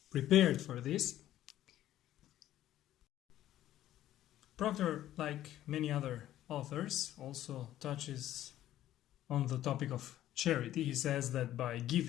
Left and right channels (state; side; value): quieter; right; 13.1 dB